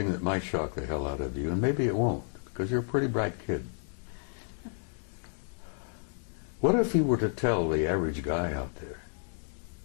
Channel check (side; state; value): right; silent; digital silence